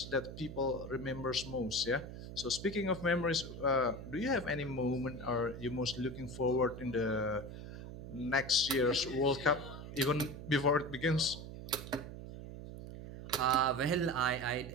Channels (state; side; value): noise; right; hum, 10 dB below the sound